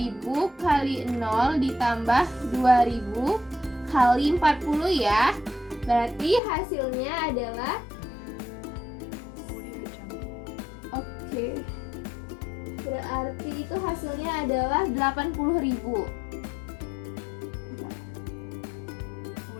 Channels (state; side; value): drops out; right; at 6.4 s